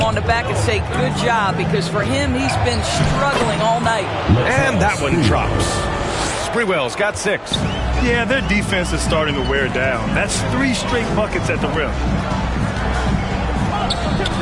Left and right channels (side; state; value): both; identical; correlation 1.00